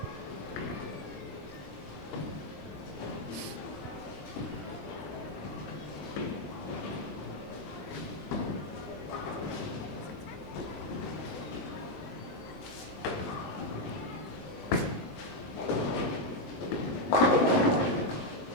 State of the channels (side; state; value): right; late; 20 ms